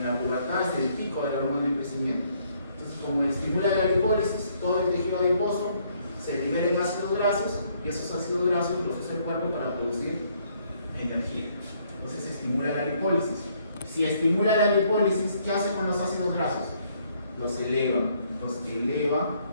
la pubertad es el pico de la hormona de crecimiento. Entonces, como estimula la lipólisis, todo el tejido adiposo se libera ácidos grasos, y esos ácidos grasos los usa el cuerpo para producir energía. Entonces se estimula la lipólisis. Si estimula la lipólisis, ¿qué hace con los ácidos grasos? Los eleva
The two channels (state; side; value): inverted; both; correlation -0.67